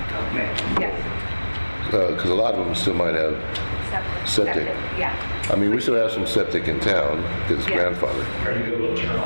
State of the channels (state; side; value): inverted; both; correlation -1.00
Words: Okay. Yes. Because a lot of them still might have septic. Yeah. I mean, we still have some septic in town because it's Yeah. grandfathered. Are you able to turn